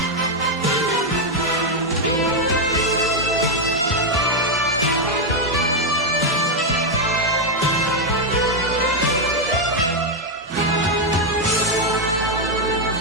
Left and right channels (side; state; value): both; normal; correlation 0.02